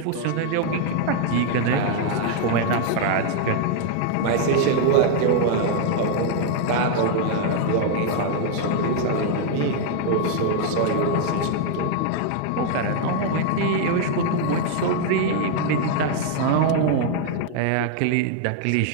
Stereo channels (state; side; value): different; both; correlation 0.00